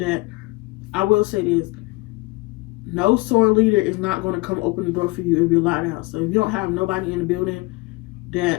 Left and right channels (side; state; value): right; quieter; 23.5 dB